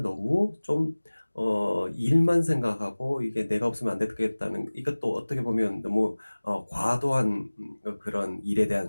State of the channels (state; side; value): inverted; both; correlation -1.00